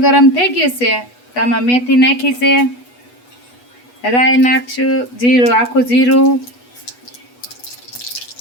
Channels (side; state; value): right; late; 8.2 ms